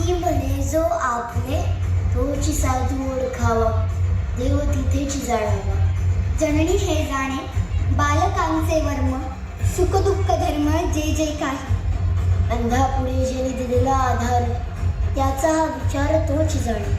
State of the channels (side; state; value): both; identical; correlation 1.00